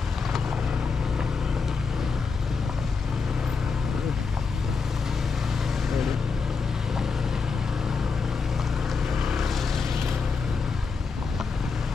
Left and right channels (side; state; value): right; quieter; 5.0 dB